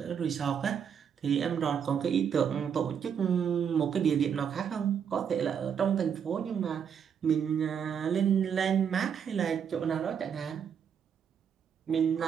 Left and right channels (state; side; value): quieter; left; 7.7 dB